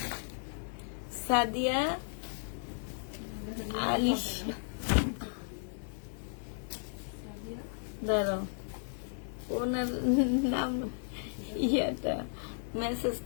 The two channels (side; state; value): right; silent; digital silence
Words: সাদিয়া আলিশ, দাঁড়াও, ওনার নাম ইয়াটা